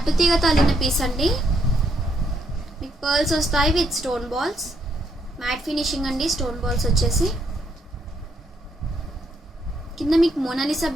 అల్లిన పీస్ అండి. మీకు పర్ల్స్ వస్తాయి with stone balls. Matte finishing అండి. స్టోన్ బాల్స్ వచ్చేసి కింద మీకు మోనాలిసా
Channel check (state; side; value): normal; both; correlation 0.74